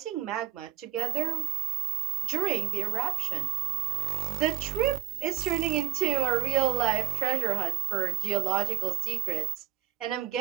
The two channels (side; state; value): left; quieter; 14.0 dB